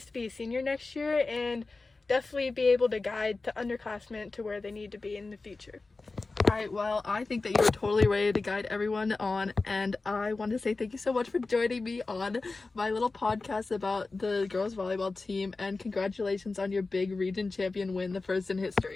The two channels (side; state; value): right; quieter; 3.7 dB